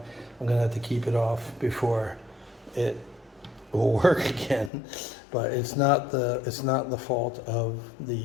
I'm gonna have to keep it off before it will work again. But it's not the fault of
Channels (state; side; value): drops out; right; at 4.7 s